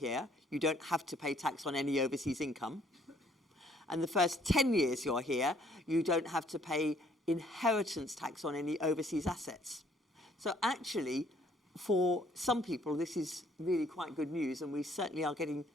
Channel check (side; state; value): both; normal; correlation 0.63